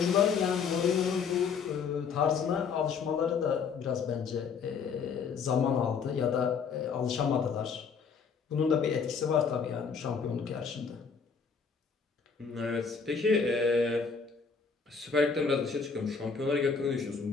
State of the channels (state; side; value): quieter; right; 5.7 dB